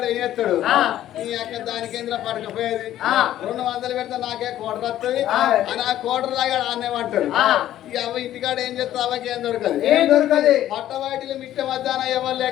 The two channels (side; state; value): right; quieter; 12.7 dB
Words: ఏం చేస్తాడు? ఈ యొక్క దాని కేంద్ర పడకపోయేది 200 పెడితే నాకే కోటర్ వస్తుంది అని ఆ కోటర్ లాగా ఆనేమంటాడు. అవ్వ ఇంటికాడ ఏం చేస్తా అవ్వకి ఏం దొరకదు ఏం దొరకదు పట్టవాటిలో మిట్ట మధ్యాహ్నం ఎవరు